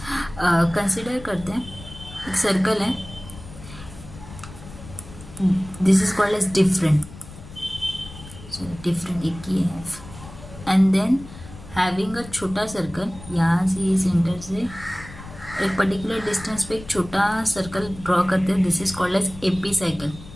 कंसिडर करते हैं. एक सर्कल है, this is called as different. So different एक ही है. एंड देन हैविंग अ छोटा सर्कल, यहाँ से सेंटर से एक पर्टिकुलर डिस्टेंस पे एक छोटा सर्कल ड्रॉ करते हैं. This is called as epicycle.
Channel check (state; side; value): noise; left; rumble, 16 dB below the sound